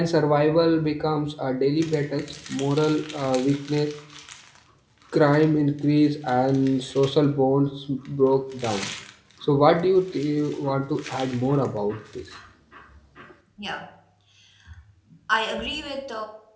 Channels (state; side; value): identical; both; correlation 1.00